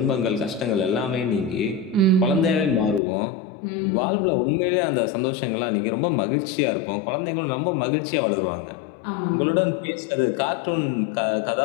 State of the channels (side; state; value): right; drops out; at 3.0 s